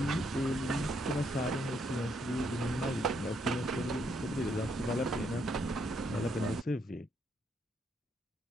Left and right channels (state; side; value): normal; both; correlation 0.74